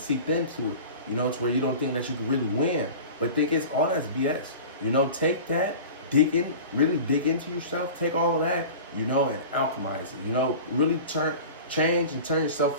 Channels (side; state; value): both; inverted; correlation -0.37